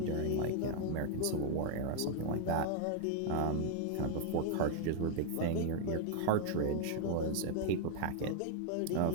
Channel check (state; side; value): different; both; correlation 0.00